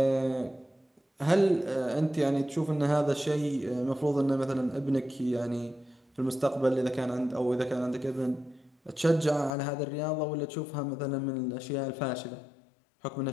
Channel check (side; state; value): right; drops out; at 9.6 s